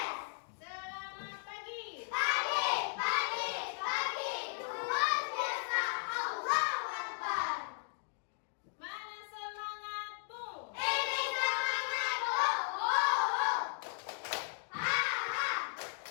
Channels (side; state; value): right; silent; digital silence